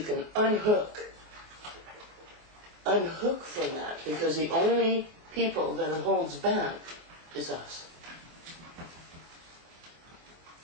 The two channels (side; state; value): left; late; 23 ms